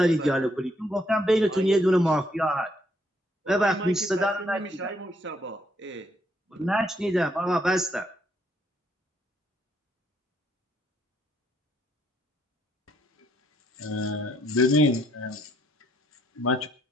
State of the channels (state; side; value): normal; both; correlation 0.71